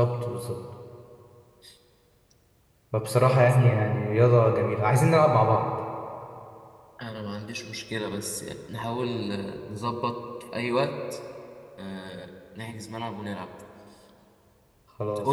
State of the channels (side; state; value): both; identical; correlation 1.00